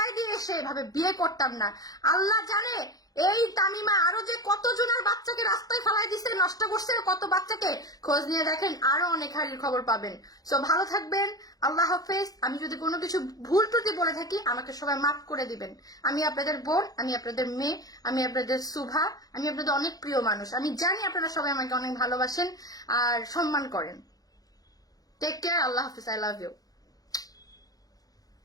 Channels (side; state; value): right; late; 0.18 ms